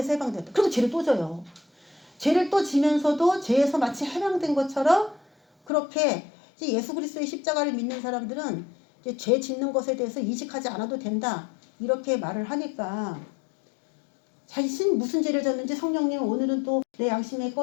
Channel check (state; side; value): drops out; right; at 5.7 s